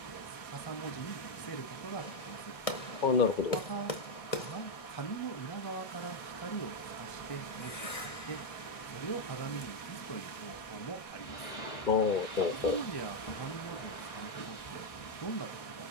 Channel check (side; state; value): right; late; 1.6 ms